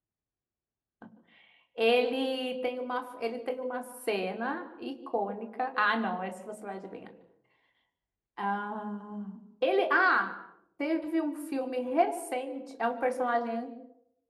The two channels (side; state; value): both; identical; correlation 1.00